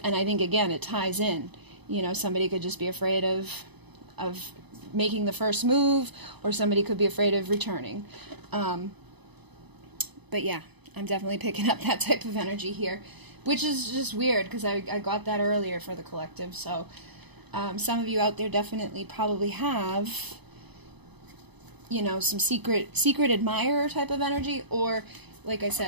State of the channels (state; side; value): late; left; 0.99 ms